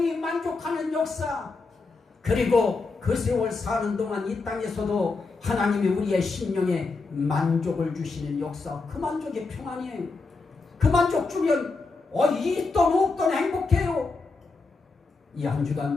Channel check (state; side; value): quieter; right; 4.0 dB